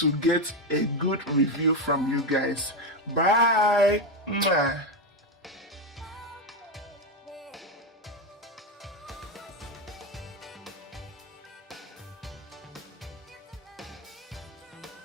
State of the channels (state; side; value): normal; both; correlation 0.09